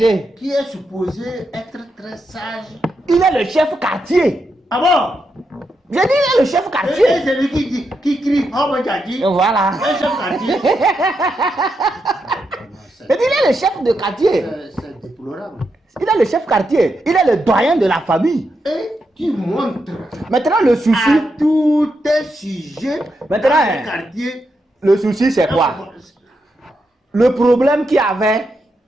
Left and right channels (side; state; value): both; normal; correlation 0.84